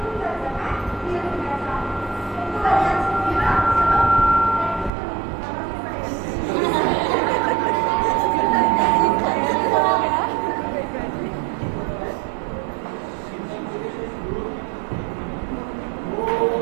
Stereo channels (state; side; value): drops out; left; at 4.9 s